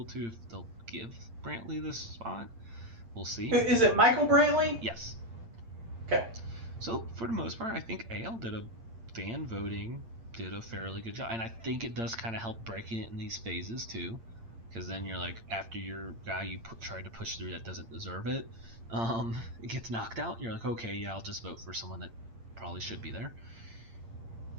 to, if they'll give Brantley this spot. We'll see. Is it Michael Brantley? Yes. Okay. So for the most part, I think AL did a fairly good job, and I think it does kind of help breaking it in these phases too, because then you're like, after your guy you tried to push through that doesn't deserve it, it gets knocked out. You're like, okay, yeah, I'll just vote for someone that probably should be there.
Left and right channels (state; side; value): late; left; 8.8 ms